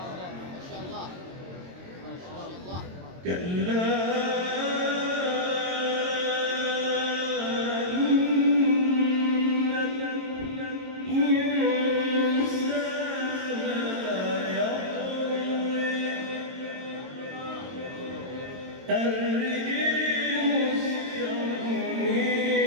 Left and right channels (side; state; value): left; late; 22 ms